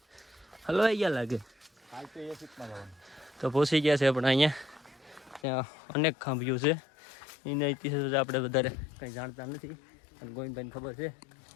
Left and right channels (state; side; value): drops out; right; at 5.4 s